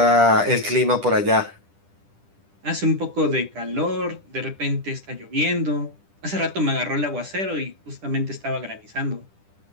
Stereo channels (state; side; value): late; left; 10 ms